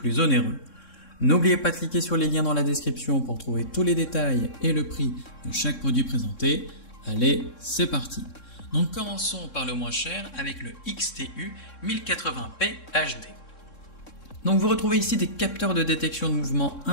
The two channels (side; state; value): right; late; 3.6 ms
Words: onéreux. N'oubliez pas de cliquer sur les liens dans la description pour trouver tous les détails et le prix de chaque produit présenté. Allez, c'est parti. Donc commençons par le moins cher avec le XTU 1080p HD. Donc vous retrouvez ici des capteurs de détection de mouvement